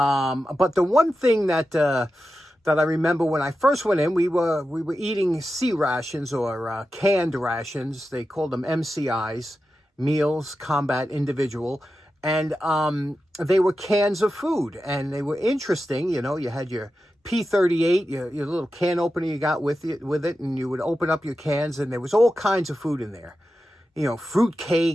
the one thing that I remember when I first went in, we were eating C rations or canned rations. They called them MCIs, Meals Combat Individual. And they were cans of food. And they were interesting. You know, you had your P38, your little can opener you got with it. And you would open up your cans. And there was all kinds of food in there. You know, fruit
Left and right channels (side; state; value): both; normal; correlation 0.91